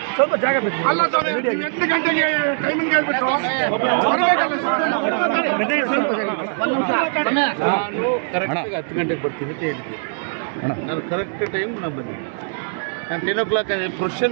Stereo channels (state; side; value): silent; left; digital silence